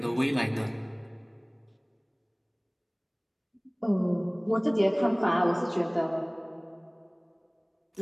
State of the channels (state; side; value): identical; both; correlation 1.00